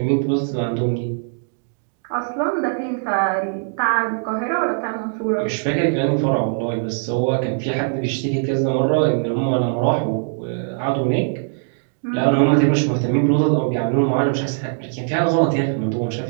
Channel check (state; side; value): silent; left; digital silence